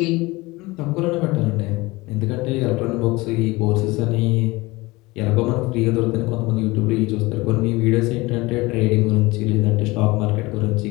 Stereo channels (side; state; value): right; quieter; 22.0 dB